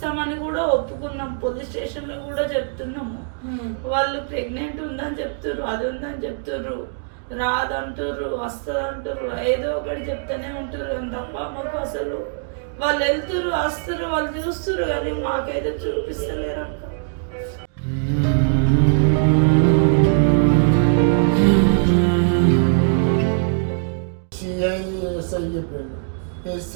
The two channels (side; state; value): left; silent; digital silence